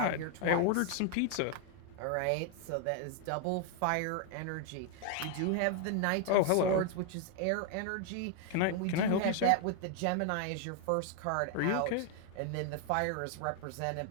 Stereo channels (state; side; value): different; both; correlation 0.00